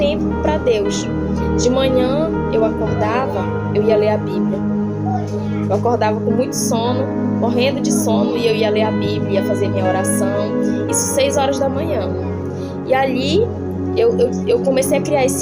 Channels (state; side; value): noise; right; rumble, 29 dB below the sound